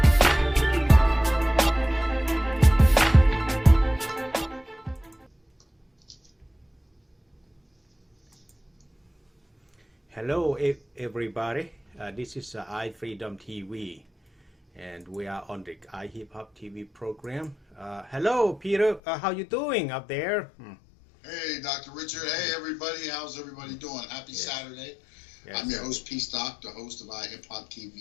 Hello, everybody. This is iFreedomTV, and we are on the iHipHopTV program. Hello, Peter. How you doing up there? Hey, Dr. Richard. Hey, everybody. How's everybody doing? Happy Saturday. Yes. I'm your host, PSTOCK, the host of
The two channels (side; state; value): right; drops out; at 19.0 s